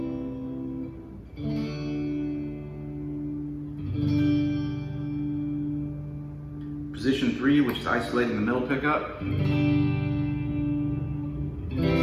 Position 3, which is isolating the middle pickup.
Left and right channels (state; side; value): identical; both; correlation 1.00